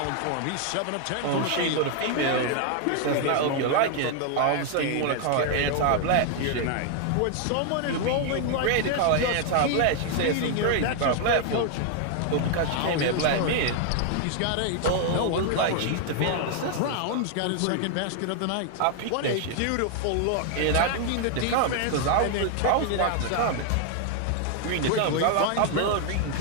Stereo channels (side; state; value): both; different; correlation 0.00